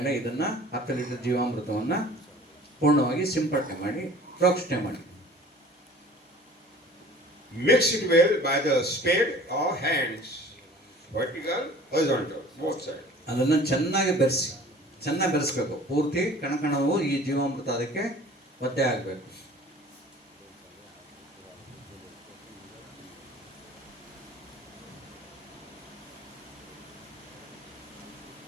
ಇದನ್ನ 10 ಲೀಟರ್ ಜೀವಾಮೃತವನ್ನು ಪೂರ್ಣವಾಗಿ ಸಿಂಪಡಣೆ ಮಾಡಿ, ಪ್ರೋಕ್ಷಣೆ ಮಾಡಿ. Mix it well by the spade or hands, vertical, horizontal, both sides. ಅದನ್ನು ಚೆನ್ನಾಗಿ ಬೆರೆಸ್ಬೇಕು. ಪೂರ್ತಿ ಕಣಕಣವು ಈ ಜೀವಾಮೃತ ಅದಕ್ಕೆ ಒದ್ದೆ ಆಗಬೇಕು.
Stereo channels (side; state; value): both; normal; correlation 0.47